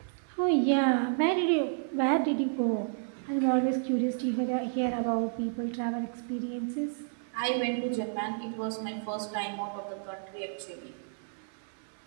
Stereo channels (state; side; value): silent; left; 57 dB below the other